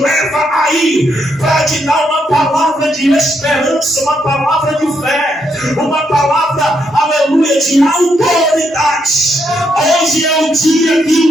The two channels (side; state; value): both; normal; correlation 0.77